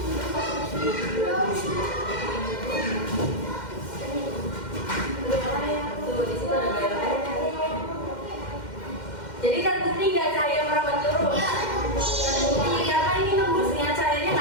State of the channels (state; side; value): late; right; 2.1 ms